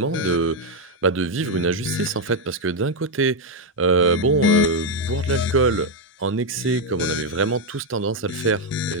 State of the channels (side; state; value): both; normal; correlation 0.02